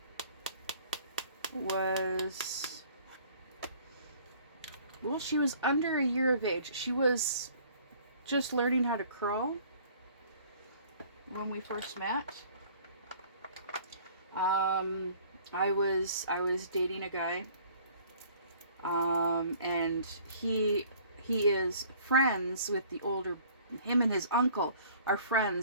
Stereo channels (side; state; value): both; inverted; correlation -0.53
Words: she was under a year of age. She was just learning how to crawl when we first met. I was dating a guy, and he is friends with the older Him and his uncle are